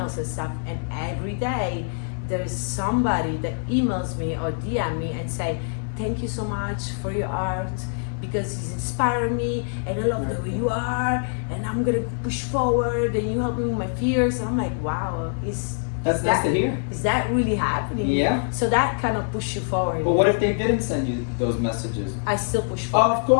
and stuff, and every day there's somebody that emails me or DM me and say, thank you so much for your art, because it's inspired me, and I love the way you are, and I'm gonna push forward, and you help me with my fears. And I'm like, wow, that's nice to hear. Is that really happening? Yeah. So that kind of pushes you forward. But what if they didn't send you those messages? I still push forward. Of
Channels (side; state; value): right; silent; 62 dB below the other